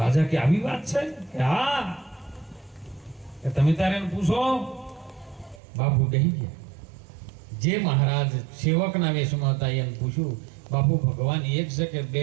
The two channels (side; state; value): left; drops out; at 5.6 s